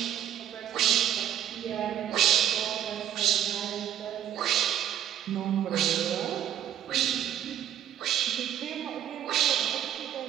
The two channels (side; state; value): left; quieter; 10.5 dB